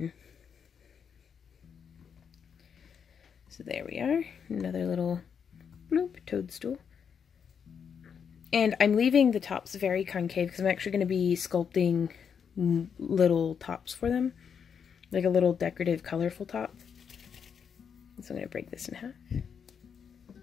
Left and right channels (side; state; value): right; quieter; 7.1 dB